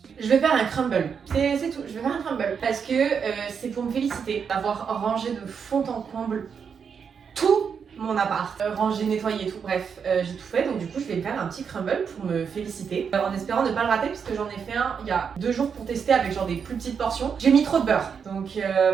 Je vais faire un crumble, c'est tout, je vais faire un crumble parce que c'est pour me féliciter d'avoir rangé de fond en comble tout mon appart, rangé, nettoyé et tout, bref, j'ai tout fait, donc du coup je vais faire un petit crumble pour me féliciter, en espérant ne pas le rater puisque j'en ai fait un il y a 2 jours pour tester avec genre des plus petites portions. J'ai mis trop de beurre, donc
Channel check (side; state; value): left; quieter; 6.6 dB